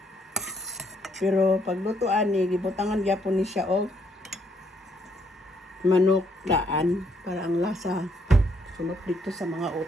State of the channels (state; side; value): normal; both; correlation 0.71